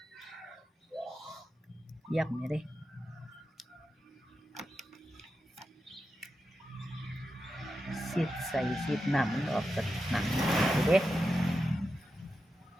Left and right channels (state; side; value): normal; both; correlation 0.89